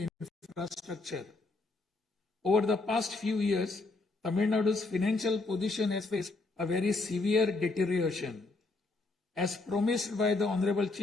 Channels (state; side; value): quieter; right; 3.3 dB